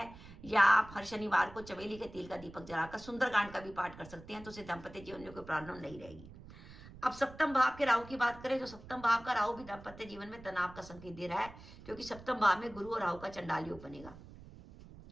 या आप हर शनिवार को चमेली के तेल का दीपक जलाकर सुंदरकांड का भी पाठ कर सकते हैं, तो उससे दाम्पत्य जीवन में कोई प्रॉब्लम नहीं रहेगी। अब सप्तम भाव के राहु की बात करें तो सप्तम भाव का राहु भी दाम्पत्य जीवन में तनाव का संकेत दे रहा है, क्योंकि सप्तम भाव में गुरु और राहु का चंडाल योग बनेगा।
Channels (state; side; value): noise; right; rumble, 17 dB below the sound